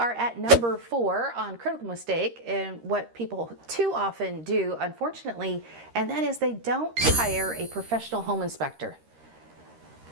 at number 4 on critical mistake and what people too often do, unfortunately, and that is they don't hire a professional home inspector.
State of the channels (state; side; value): late; left; 13 ms